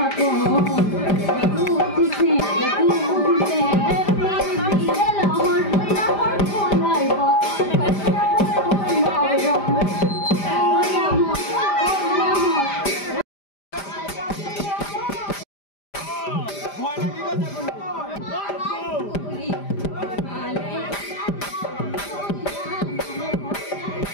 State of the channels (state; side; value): late; right; 5.0 ms